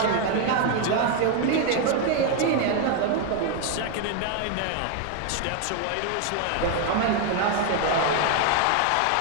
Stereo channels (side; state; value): both; different; correlation 0.01